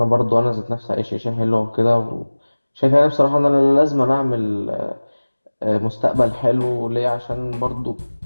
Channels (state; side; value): inverted; both; correlation -1.00